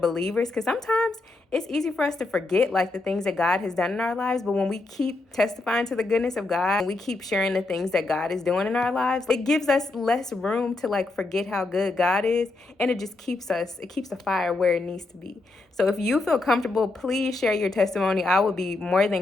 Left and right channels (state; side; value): quieter; right; 3.2 dB